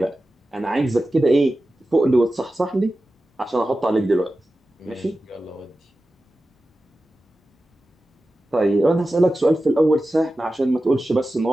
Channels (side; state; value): both; normal; correlation 0.94